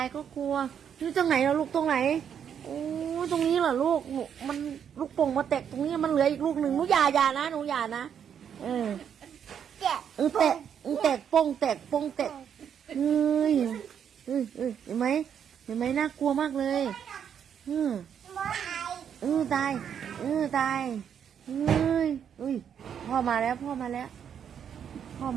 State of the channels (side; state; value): left; quieter; 8.3 dB